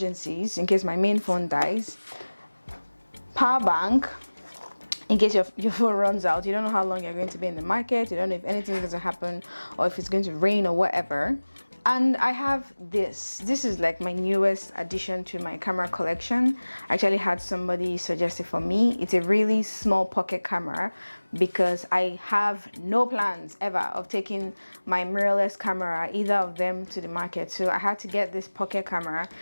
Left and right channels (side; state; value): both; inverted; correlation -1.00